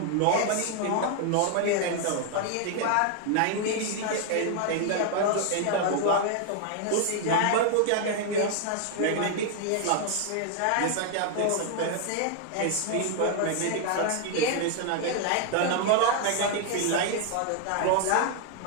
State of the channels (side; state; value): both; different; correlation 0.00